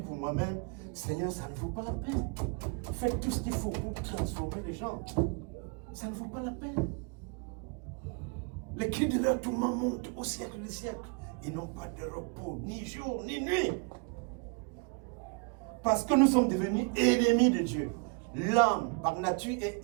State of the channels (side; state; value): left; quieter; 32.5 dB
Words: moi-même. Seigneur, ça ne vaut pas la peine. Faites tout ce qu'il faut pour transformer les gens. Ça ne vaut pas la peine. Les cris de leur tourment montent au siècle des siècles. Ils n'ont pas de repos, ni jour, ni nuit. Parce que nous sommes devenus ennemis de Dieu. L'homme, par nature, est